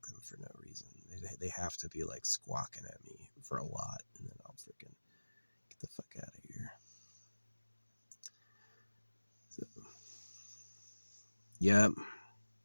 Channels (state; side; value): inverted; both; correlation -1.00